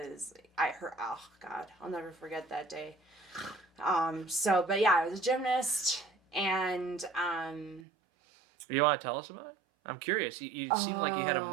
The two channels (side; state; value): left; drops out; at 7.9 s